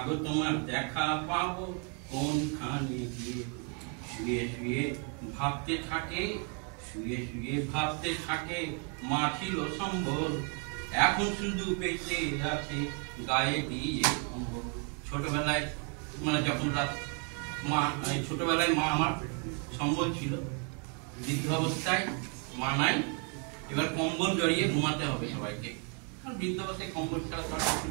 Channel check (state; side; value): quieter; left; 38.8 dB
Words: তোমার দেখা পাবো কোনখানে গিয়ে। শুয়ে শুয়ে ভাবতে থাকে, শুয়ে শুয়ে ভাবতে থাকে, মা ছিল সম্বল, এখন শুধু বেঁচে আছে গায়ে দিয়ে কম্বল। ছোটবেলায় মানে যখন মা, ছোটবেলায় মা আমার সম্বল ছিল, বৃদ্ধ অবস্থায় মা নাই, এবার কম্বল জড়িয়ে ঘুমাতে হবে সবাইকে, কারণ বৃদ্ধ অবস্থায় কম্বল ছাড়া তো কিছু